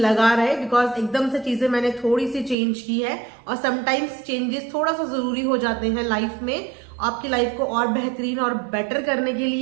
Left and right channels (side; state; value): left; drops out; at 2.6 s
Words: लगा रहे। बिकॉज एकदम से चीजें मैंने थोड़ी सी चेंज की है और समटाइम्स चेंजेस थोड़ा सा जरूरी हो जाते हैं लाइफ में, आपकी लाइफ को और बेहतरीन और बेटर करने के